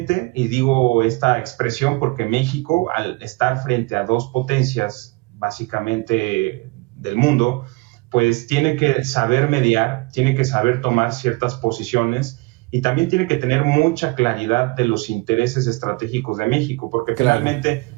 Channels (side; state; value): left; quieter; 25.5 dB